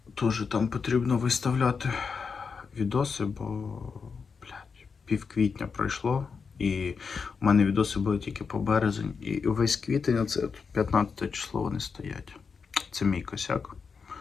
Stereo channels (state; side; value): quieter; right; 5.5 dB